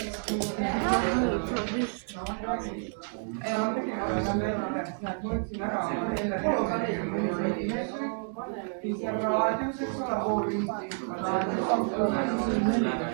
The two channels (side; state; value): left; silent; 56 dB below the other